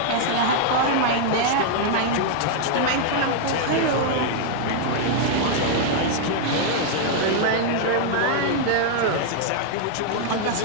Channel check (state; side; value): different; both; correlation 0.00